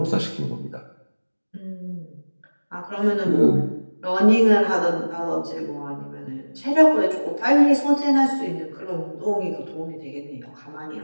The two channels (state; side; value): inverted; both; correlation -1.00